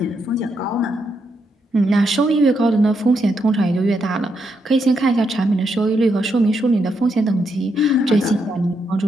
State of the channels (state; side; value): normal; both; correlation 0.80